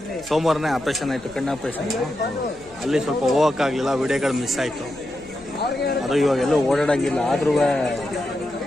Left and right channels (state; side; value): noise; left; hum, 26 dB below the sound